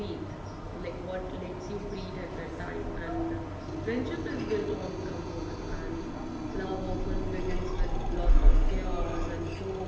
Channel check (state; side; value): identical; both; correlation 1.00